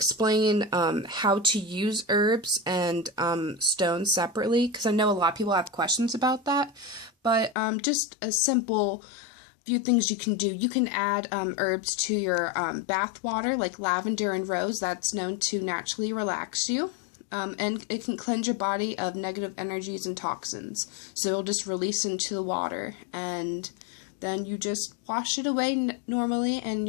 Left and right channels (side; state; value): right; drops out; at 7.6 s